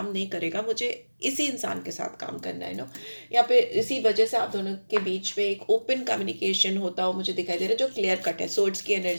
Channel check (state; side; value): inverted; both; correlation -1.00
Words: नहीं करेगा, मुझे इसी इंसान के साथ काम करना है, यहाँ पे इसी वजह से आप दोनों के बीच में एक ओपन कम्युनिकेशन होता हो मुझे दिखाई दे रहा है, जो क्लियर कट है। सोर्ड्स की